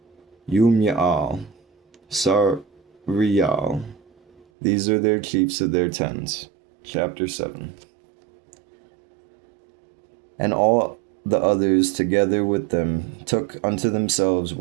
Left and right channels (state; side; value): drops out; left; at 4.4 s